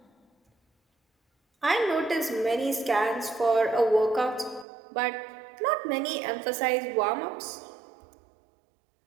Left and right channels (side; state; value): left; drops out; at 4.7 s